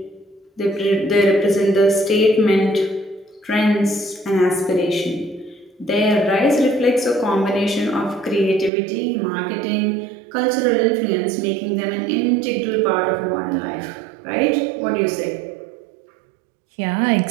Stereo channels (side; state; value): left; drops out; at 8.7 s